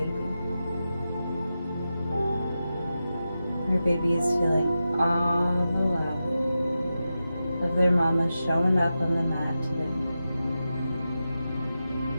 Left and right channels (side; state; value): both; inverted; correlation -0.91